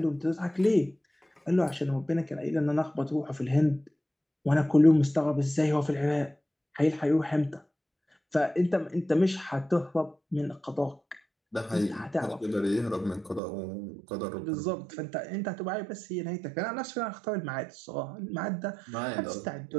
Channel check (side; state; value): left; drops out; at 13.4 s